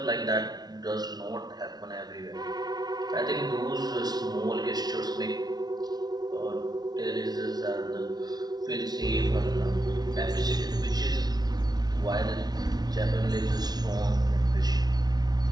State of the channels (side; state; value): left; late; 0.19 ms